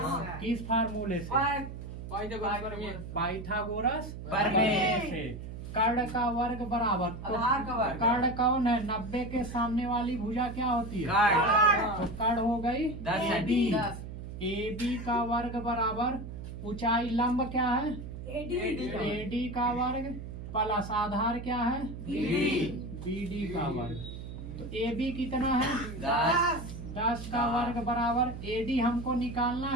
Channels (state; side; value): noise; right; hum, 9 dB below the sound